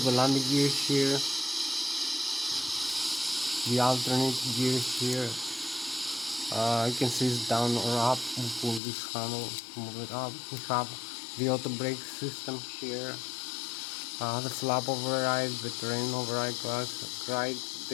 landing gear here, the alternate gear here. You can see it's down or up. We pull this handle, move it up. We have the auto brake system here, the flap override, the terrain override class,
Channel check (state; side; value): drops out; right; at 8.8 s